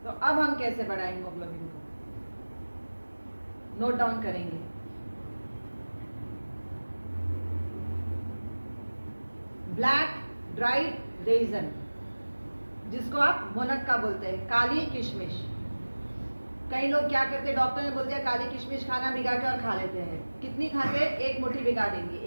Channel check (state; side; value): inverted; both; correlation -1.00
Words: तो अब हम कैसे बढ़ाएं हीमोग्लोबिन को, नोट डाउन करेंगे। ब्लैक ड्राइड रेजन, जिसको आप मुनक्का बोलते हैं, काली किशमिश। कई लोग क्या करते हैं, डॉक्टर ने बोल दिया काली किशमिश खाना, भिगा के और खा लेते हैं। कितनी खाते हैं? 1 मुट्ठी भिगा देंगे